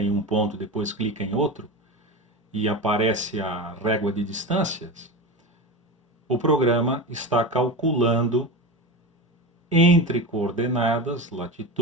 em um ponto, depois clica em outro, e aparece a régua de distâncias, o programa está calculando entre coordenadas,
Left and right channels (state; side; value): normal; both; correlation 0.24